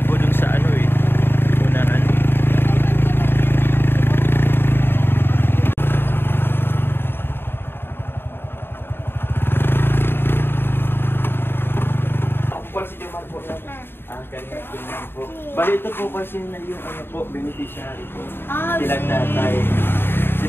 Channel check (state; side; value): late; right; 0.11 ms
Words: po dun sa ano eh. Unahan. Bali ito po kasi na yung ano po, beneficiary po. Sila tatay.